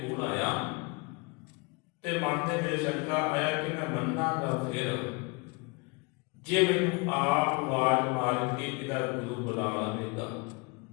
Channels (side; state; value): right; quieter; 29.0 dB